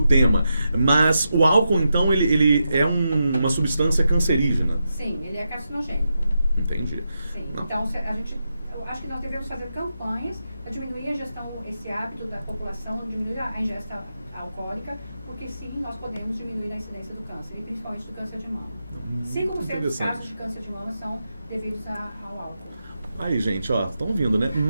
tema. Mas o álcool, então, ele é uma substância cancerígena? Sim, ele é carcinogênico. Entendi. Sim. Então, eu acho que nós devemos fazer campanhas para diminuir a ingestão, esse hábito da população, diminuir a ingesta alcoólica, porque sim, nós podemos diminuir a incidência do câncer, e principalmente do câncer de mama. 5% dos casos de câncer de mama são devidos ao álcool. Aí, gente, ó, estão vindo, né?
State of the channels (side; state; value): both; inverted; correlation -0.87